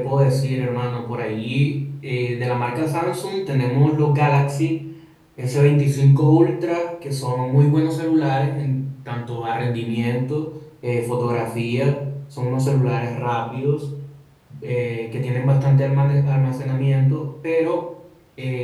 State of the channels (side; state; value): both; identical; correlation 1.00